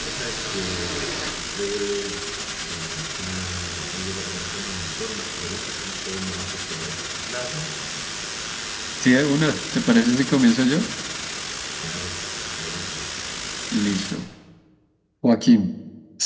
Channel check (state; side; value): identical; both; correlation 1.00